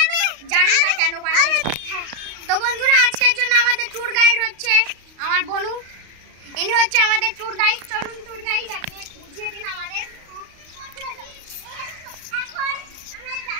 জানি না কেন বানিয়েছে। তো বন্ধুরা, আজকের জন্য আমাদের ট্যুর গাইড হচ্ছে আমার বনু, ইনি হচ্ছে আমাদের ট্যুর গাইড। চলুন ট্যুর গাইড, আপনি বুঝিয়ে দিন আমাদের।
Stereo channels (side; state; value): left; late; 35 ms